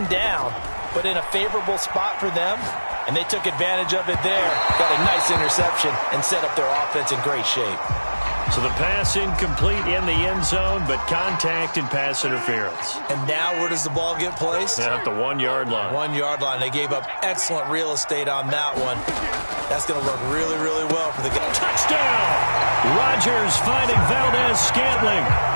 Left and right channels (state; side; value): inverted; both; correlation -1.00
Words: down, but in a favorable spot for them, and they took advantage of it there. Got a nice interception and set up their offense in great shape. So the pass incomplete in the end zone, but contact and pass interference. And now where does the ball get placed? At the 1 yard line. 1 yard line. They gave up excellent real estate on that one. That's going to work really, really well for the guy. Touchdown! Rodgers finding Valdez-Scantling.